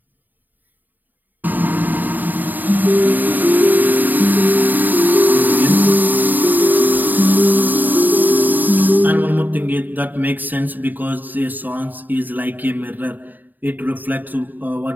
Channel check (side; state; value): left; late; 0.087 ms